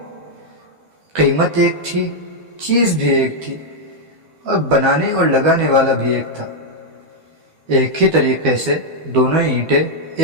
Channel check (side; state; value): left; late; 12 ms